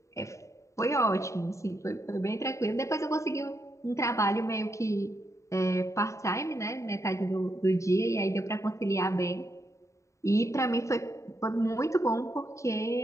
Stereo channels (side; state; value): right; late; 0.14 ms